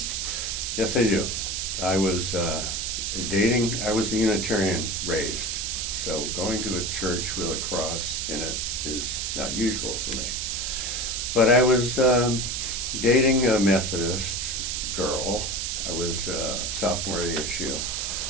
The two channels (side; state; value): right; noise; hiss, 2 dB below the sound